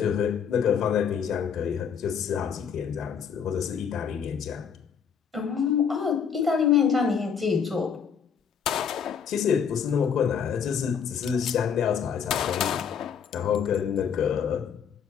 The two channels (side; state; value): right; quieter; 7.2 dB